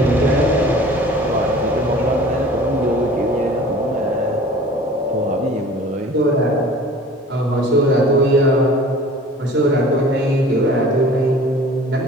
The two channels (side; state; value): both; normal; correlation 0.45